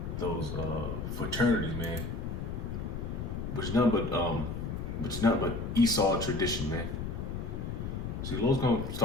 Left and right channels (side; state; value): left; noise; rumble, 5 dB below the sound